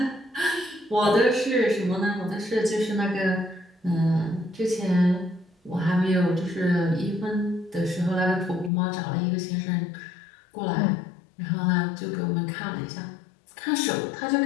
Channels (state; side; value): drops out; right; at 8.7 s